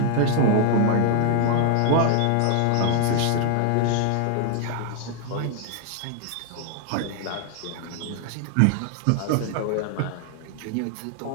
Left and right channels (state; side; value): different; both; correlation 0.00